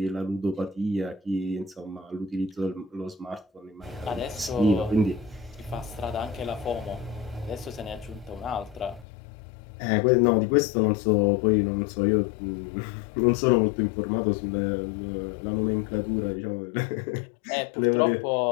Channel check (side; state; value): right; drops out; at 9.1 s